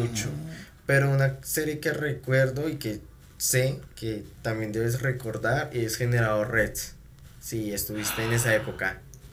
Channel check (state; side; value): identical; both; correlation 1.00